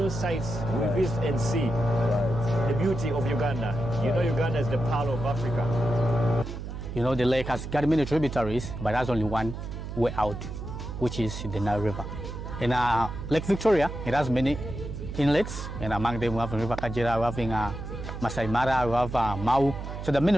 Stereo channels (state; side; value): noise; right; hum, 8 dB below the sound